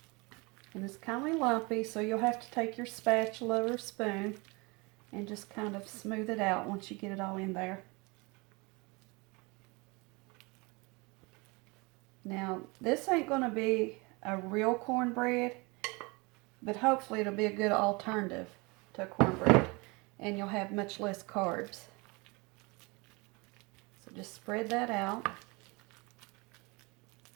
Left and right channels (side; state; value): left; quieter; 27.1 dB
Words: And it's kind of lumpy, so you'll have to take your spatula or spoon and just kind of smooth it out once you get it all in there. Now, this ain't going to be a real cornbread, but hopefully it'll be a good alternative to cornbread, and you'll have much less carbs. So just spread that out.